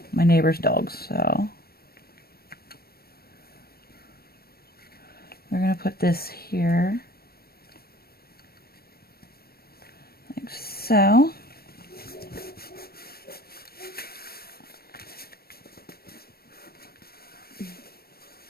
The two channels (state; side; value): late; right; 0.44 ms